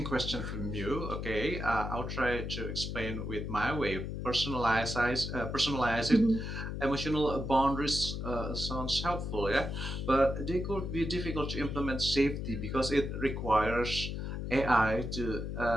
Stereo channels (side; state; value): left; noise; hum, 4 dB below the sound